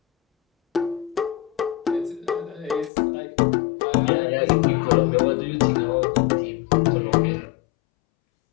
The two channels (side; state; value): right; drops out; at 2.9 s